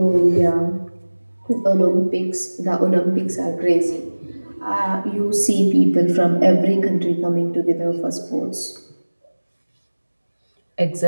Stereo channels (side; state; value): both; inverted; correlation -1.00